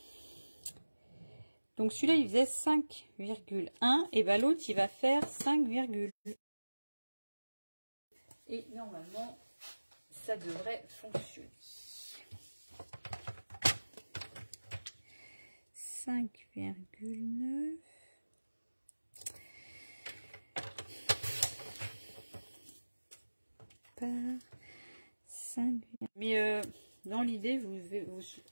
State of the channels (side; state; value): both; inverted; correlation -1.00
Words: Donc, celui-là, il faisait 5,1 et ben l'autre, il va faire 5, et normalement, ça devrait fonctionner. 5,9 par 5. Mais dans l'idée, vous